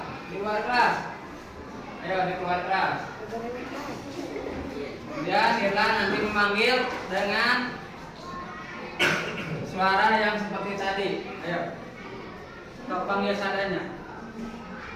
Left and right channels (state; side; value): identical; both; correlation 1.00